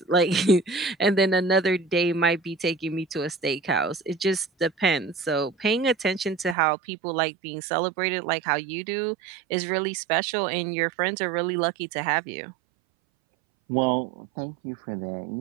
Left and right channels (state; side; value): drops out; left; at 6.6 s